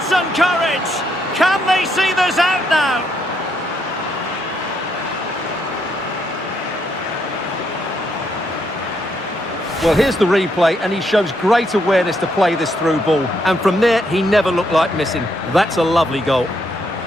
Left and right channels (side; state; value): both; normal; correlation 0.76